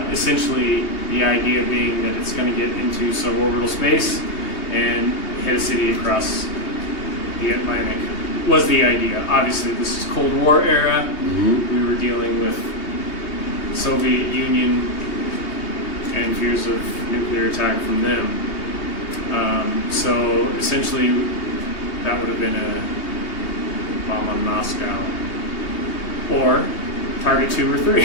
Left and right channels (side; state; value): right; late; 3.2 ms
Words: Essentially, the idea being that it's going to get into suborbital space and hit a city across the Atlantic was the idea. Obviously, this is Cold War era. We were dealing with Soviet Union and fears of nuclear attack from them. So essentially, that would have been a bomb on Moscow, or target 2 or